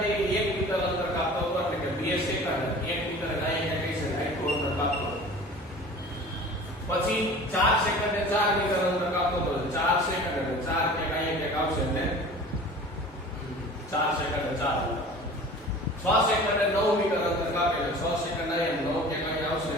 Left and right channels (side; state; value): both; normal; correlation 0.42